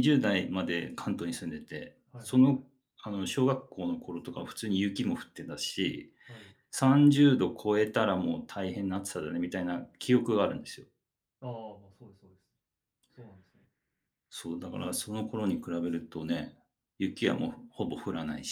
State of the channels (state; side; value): identical; both; correlation 1.00